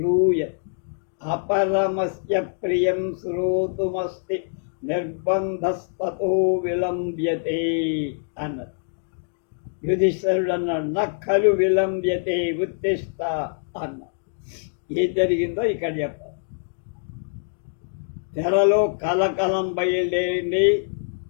అపరమస్య ప్రియం శ్రోతుమస్తి నిర్బంధస్తతో విలంబ్యతే అన్నది. యుధిష్ఠిరుడు అన్నాడు, నక్కలు విలంబ్యతే ఉత్తిష్ట అన్నాడు. ఏం జరిగిందో ఇక్కడ చెప్పాలి. తెరలో కలకలం బయలుదేరింది.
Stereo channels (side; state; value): right; silent; digital silence